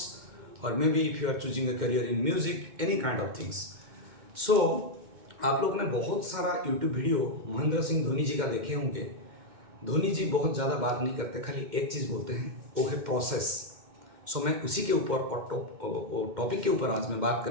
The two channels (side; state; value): left; late; 2.1 ms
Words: or maybe if you are choosing a career in music, any kind of things. सो आप लोग ने बहुत सारा YouTube video Mahendra Singh Dhoni जी का देखे होंगे। धोनी जी बहुत ज़्यादा बात नहीं करते, खाली एक चीज़ बोलते हैं, वो है प्रोसेस। सो मैं उसी के ऊपर और टॉपिक के ऊपर आज मैं बात